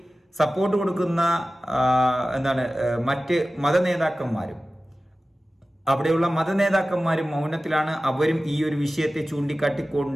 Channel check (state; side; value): normal; both; correlation 0.96